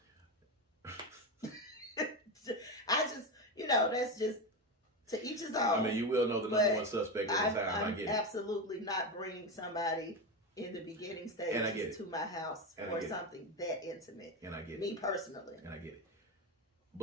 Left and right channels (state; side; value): normal; both; correlation 0.15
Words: I just, you know, that's just to each his own. I mean, you will know the number one suspect at the time. I get it. I'm absolutely not bringing somebody in the beginning stages to my house for something that intimate. And I get it. Me personally. And I get it.